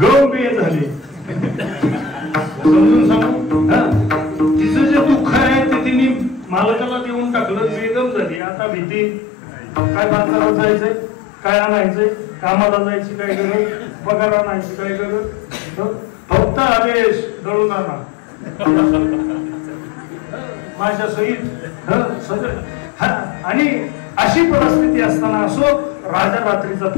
गमे झाले. समजून सांगू, तिचं जे दुःख आहे ते तिने मालकाला देऊन टाकलं, बेगम झाली. आता भीती काय, बाजारात जायचंय, काय आणायचंय, कामाला जायची काय गरज, पगार आणायची काय गरज, फक्त आदेश दळून आणा माझ्या सहित. आणि अशी परिस्थिती असताना असो राजा रात्रीचा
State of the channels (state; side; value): drops out; right; at 8.4 s